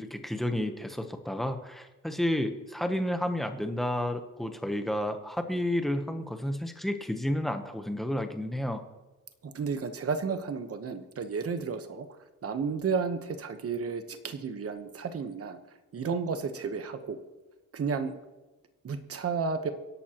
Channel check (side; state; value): both; normal; correlation 0.56